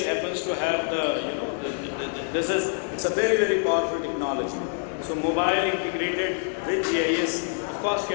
happens to have the, it's a very, very powerful technology. So mobile integrated with GIS, of course,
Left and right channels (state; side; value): silent; right; 61 dB below the other